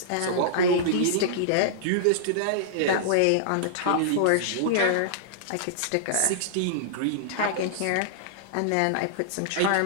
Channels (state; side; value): different; both; correlation -0.02